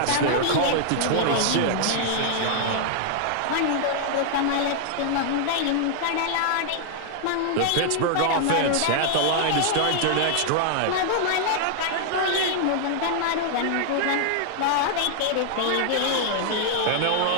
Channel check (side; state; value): both; different; correlation -0.01